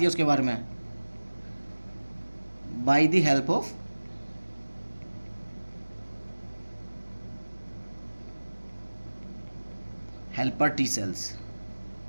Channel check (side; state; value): both; inverted; correlation -1.00